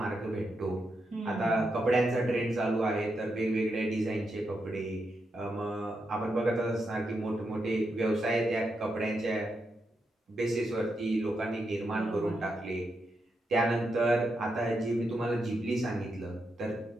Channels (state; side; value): normal; both; correlation 0.84